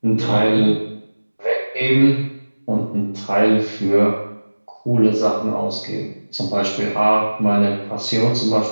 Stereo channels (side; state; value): both; inverted; correlation -1.00